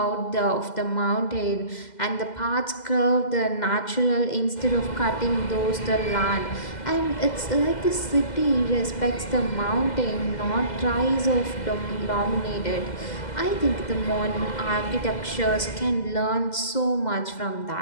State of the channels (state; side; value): late; right; 2.0 ms